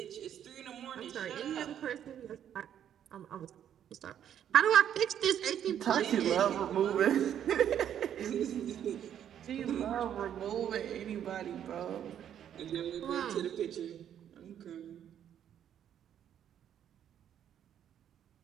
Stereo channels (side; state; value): left; quieter; 9.8 dB